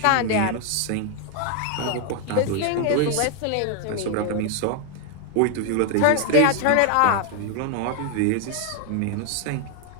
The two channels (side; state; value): both; different; correlation 0.00